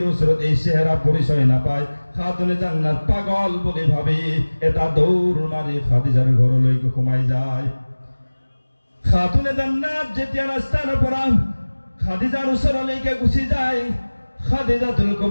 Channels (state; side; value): inverted; both; correlation -1.00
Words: ওচৰত এই চেহারা পরিচয় নাপায়। খাতুনে জান্নাত পাগল বুলি ভাবি এটা দৌড় মাৰি খাদিজাৰ ঘৰলৈকে সোমাই যায়। খাতুনে জান্নাত যেতিয়া ৰাস্তাৰ পৰা খাদিজাৰ ওচৰলৈকে গুচি যায়, খাদিজাতুল